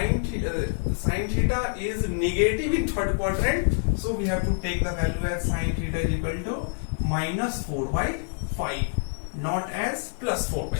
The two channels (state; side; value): silent; right; 60 dB below the other